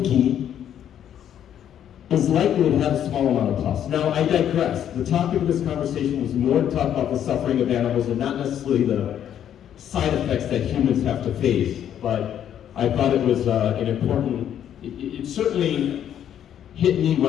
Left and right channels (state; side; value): quieter; right; 10.0 dB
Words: ghee, is likely to have a small amount of pus. Now, I digress. The topic of this conversation was more to talk about the suffering of animals and not necessarily the side effects that humans have to face, but I thought it was an important, it certainly hit me